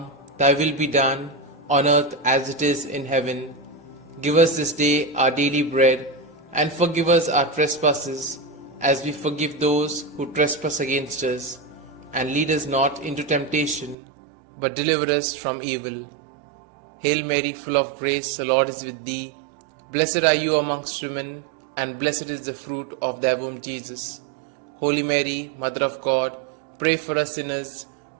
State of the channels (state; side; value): drops out; left; at 14.0 s